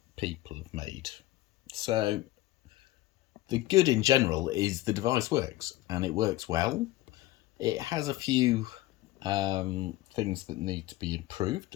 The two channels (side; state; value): right; quieter; 17.1 dB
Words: people have made. So, the good in general is the device works, and it works well. It has a few things that need to be improved,